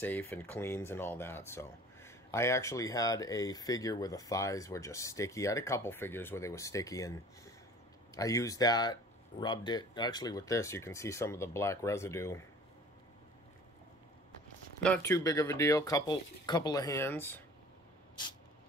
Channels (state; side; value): normal; both; correlation 0.47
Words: and cleans and all that. So I actually had a figure where the thighs were just sticky. I had a couple figures where they were sticky, and I used that, rubbed it. Actually with this you can see some of the black residue. Not too big of a deal, couple of hands.